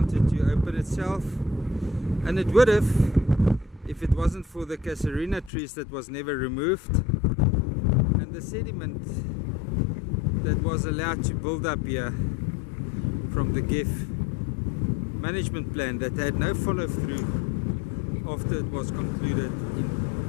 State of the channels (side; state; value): right; drops out; at 5.5 s